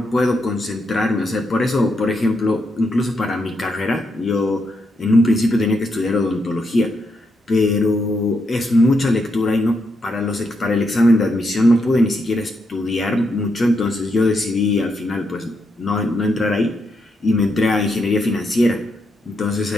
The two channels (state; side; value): normal; both; correlation 0.81